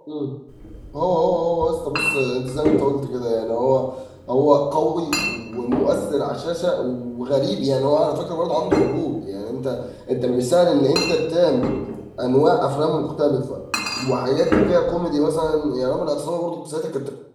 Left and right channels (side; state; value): both; identical; correlation 1.00